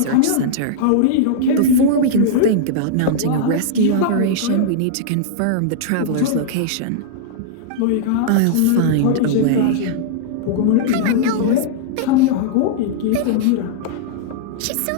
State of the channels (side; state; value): both; different; correlation -0.02